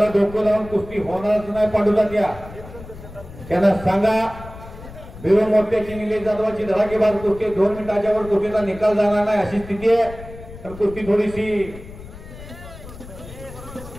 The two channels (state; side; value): noise; left; rumble, 15 dB below the sound